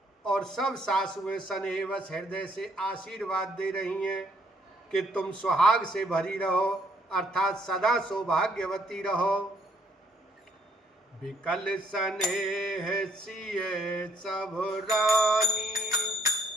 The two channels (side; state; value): both; normal; correlation 0.68